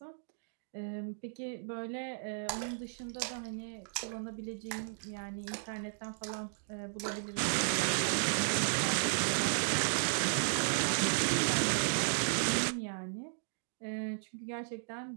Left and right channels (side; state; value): left; silent; digital silence